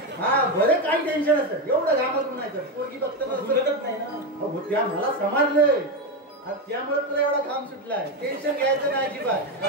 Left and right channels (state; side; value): normal; both; correlation 0.12